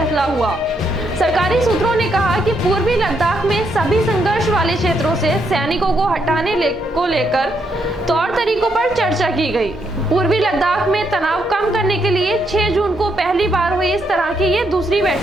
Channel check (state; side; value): normal; both; correlation 0.77